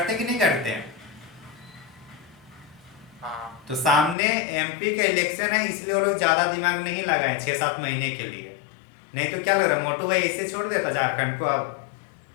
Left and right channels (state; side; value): drops out; right; at 4.2 s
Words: कि नहीं करते हैं? तो सामने एमपी का इलेक्शन है, इसलिए वो लोग ज्यादा दिमाग नहीं लगाए 6-7 महीने के लिए। नहीं तो क्या लग रहा है, मोटू भाई ऐसे छोड़ देता झारखंड को, अब